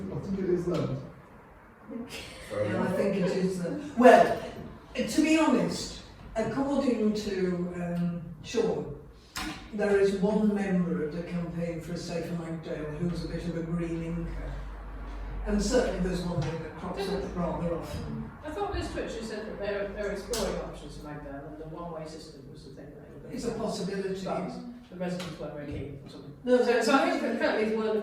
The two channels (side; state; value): both; identical; correlation 1.00